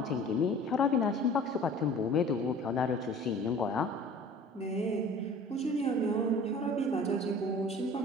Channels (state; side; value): normal; both; correlation 0.46